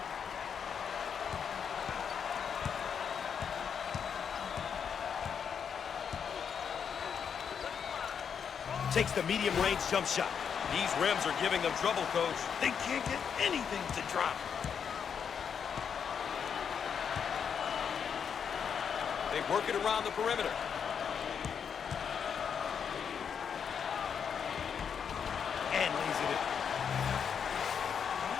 Takes the medium-range jump shot. These rims are giving them trouble, Coach. They can't get anything to drop. They work it around the perimeter. And lays it in.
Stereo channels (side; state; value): right; quieter; 7.2 dB